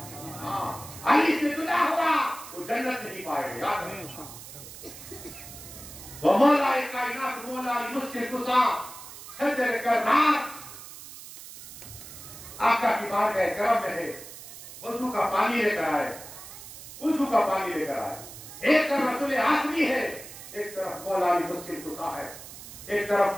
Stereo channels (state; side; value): noise; right; hiss, 14 dB below the sound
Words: ہاں علی سے جدا ہوا وہ جنت نہیں پائے گا۔ یاد ہے وہ مولا کائنات مولا مشکل کشا ہے تیرے کا رات، آقا کی بارگاہ کرم میں ہے، وضو کا پانی لے کر آئے، وضو کا پانی لے کر آئے۔ ایک طرف رسول آسمی ہے، ایک طرف مولا علی مشکل کشا ہے، ایک